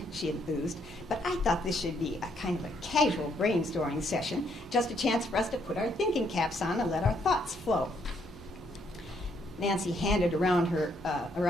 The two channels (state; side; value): normal; both; correlation 0.72